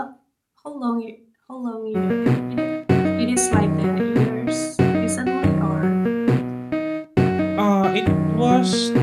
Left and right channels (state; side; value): identical; both; correlation 1.00